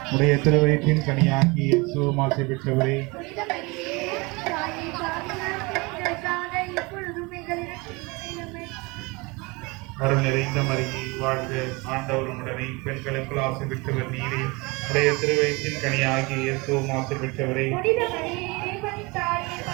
உடைய திருவயிற்றின் கனியாகி இயேசுவும் ஆசை பெற்றவரே. அருள் நிறைந்த மரியை வாழ்க, ஆண்டவர் உடனே பெண்களுக்குள் ஆசை பெற்றவர் நீரே, உடைய திருவயிற்றின் கனியாகி இயேசுவும் ஆசை பெற்றவரே.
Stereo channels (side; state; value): left; quieter; 26.0 dB